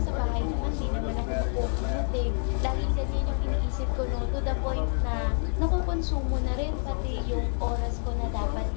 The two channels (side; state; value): right; silent; 55 dB below the other